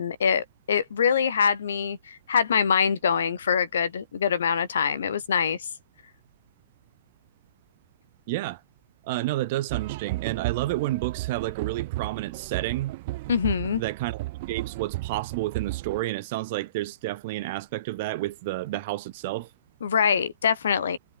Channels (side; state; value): both; inverted; correlation -0.55